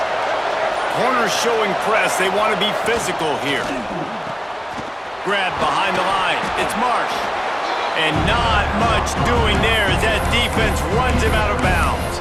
Corners showing press. They want to be physical here. Grab behind the line. It's Marsh. And not much doing there as that defense runs him out of bounds.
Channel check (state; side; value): identical; both; correlation 1.00